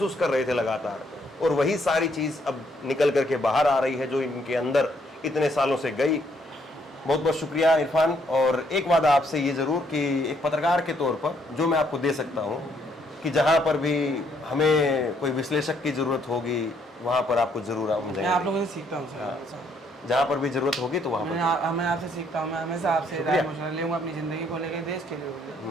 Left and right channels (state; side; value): normal; both; correlation 0.70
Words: कर रहे थे लगातार, और वही सारी चीज अब निकल करके बाहर आ रही है जो इनके अंदर इतने सालों से गई। बहुत बहुत शुक्रिया इरफान। और एक वादा आपसे ये जरूर कि एक पत्रकार के तौर पर जो मैं आपको दे सकता हूँ कि जहाँ पर भी हमें कोई विश्लेषक की जरूरत होगी वहाँ पर आपको जरूर हम मैं आप जाएंगे। लोगों से सीखता हूँ सर। जहाँ पर भी जरूरत होगी तो वहाँ पर। मैं आपसे सीखता हूँ, मैं हमेशा आपसे राय मशवरा लूँगा अपनी ज़िंदगी को लेकर, देश के